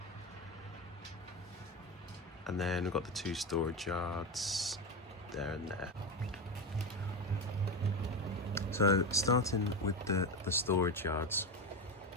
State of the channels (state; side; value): normal; both; correlation 0.16